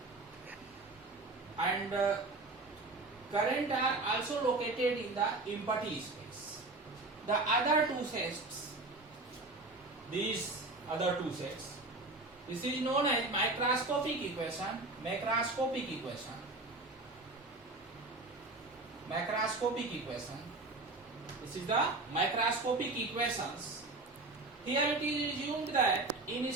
and current are also located in the empty space. The other two sets, these other two sets, this is known as microscopic equation. Macroscopic equation. Macroscopic equation. This is the microscopic equations. Here it is assumed that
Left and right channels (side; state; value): left; quieter; 3.1 dB